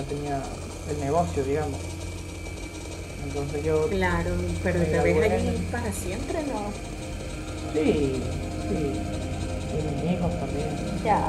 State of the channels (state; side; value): identical; both; correlation 1.00